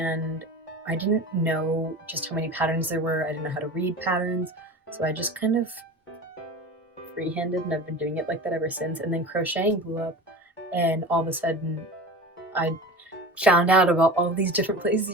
I didn't know just how many patterns there were. I didn't know how to read patterns, so I just kind of freehanded, and I've been doing it like that ever since. And then crocheting blew up, and all of a sudden I found out about all these different places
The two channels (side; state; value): both; normal; correlation 0.33